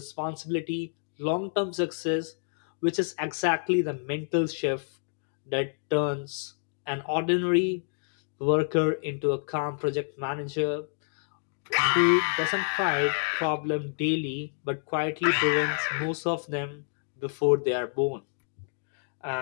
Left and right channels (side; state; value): right; silent; digital silence